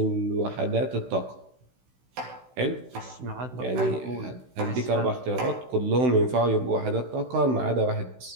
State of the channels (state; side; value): late; left; 16 ms